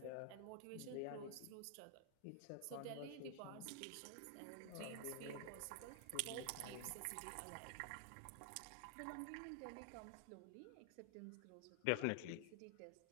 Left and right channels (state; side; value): different; both; correlation 0.00